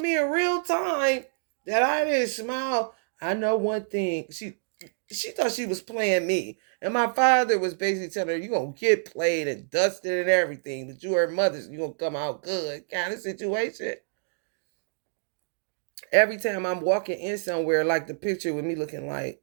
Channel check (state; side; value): silent; left; digital silence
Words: in real time that I didn't smile. I know one thing. She thought she was playing me. And my father was basically telling her, you're going to get played and dusted and everything, but you her mother's, you're going to come out good kind of situation. Every time I'm walking in somewhere, like the picture with me looking